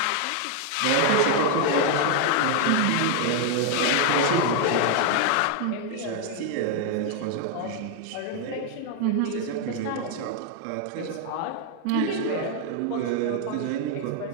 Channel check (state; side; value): different; both; correlation 0.00